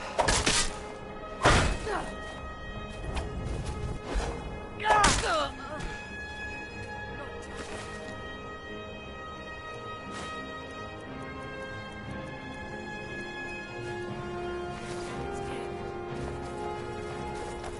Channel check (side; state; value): both; identical; correlation 1.00